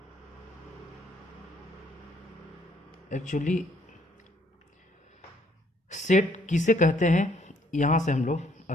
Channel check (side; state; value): both; normal; correlation 0.66